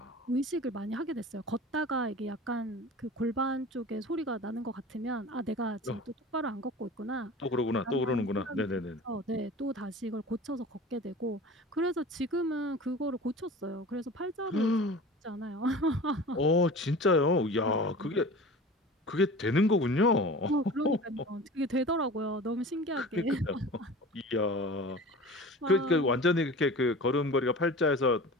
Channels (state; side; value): normal; both; correlation 0.37